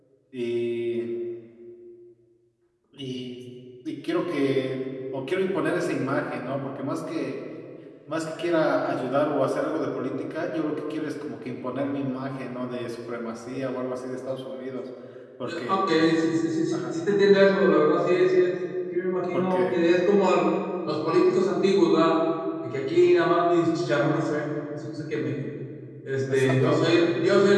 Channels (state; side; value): identical; both; correlation 1.00